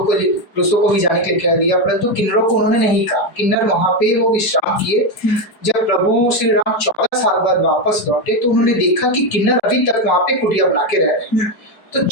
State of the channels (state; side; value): late; right; 5.1 ms